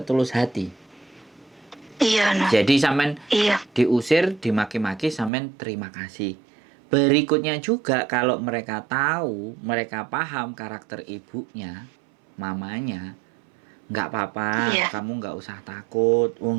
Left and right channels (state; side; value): drops out; left; at 5.3 s